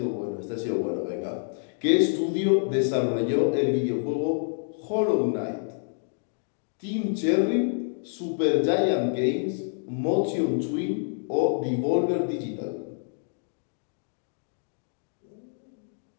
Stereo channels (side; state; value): right; silent; digital silence